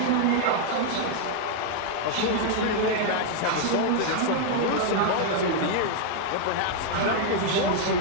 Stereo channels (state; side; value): different; both; correlation 0.00